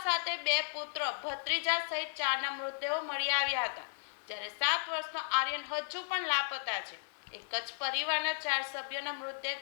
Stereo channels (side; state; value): right; silent; 54 dB below the other